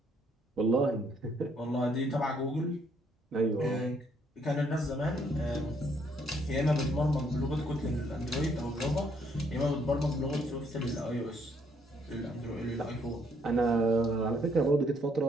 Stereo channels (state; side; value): normal; both; correlation 0.69